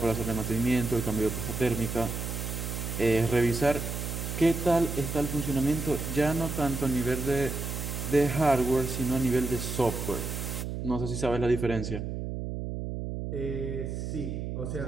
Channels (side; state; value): right; noise; hum, 4 dB below the sound